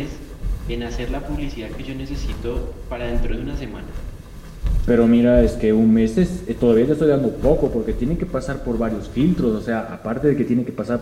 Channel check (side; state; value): both; identical; correlation 1.00